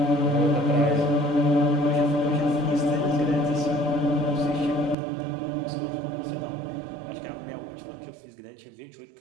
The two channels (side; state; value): left; drops out; at 5.0 s